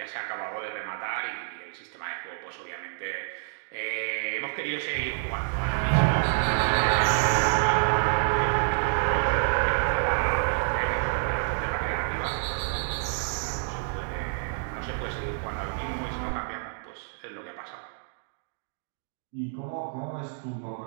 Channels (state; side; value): silent; left; digital silence